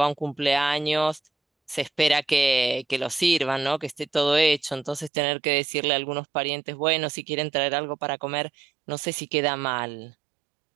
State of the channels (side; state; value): left; drops out; at 5.1 s